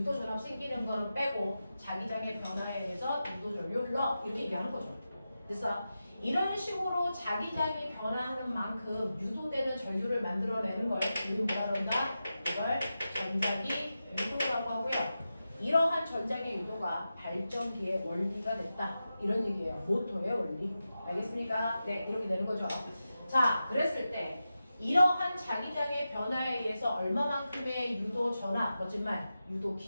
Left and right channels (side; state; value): both; inverted; correlation -0.92